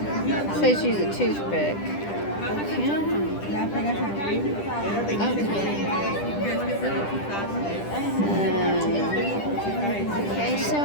Says use a toothpick. Okay, so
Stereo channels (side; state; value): right; late; 10 ms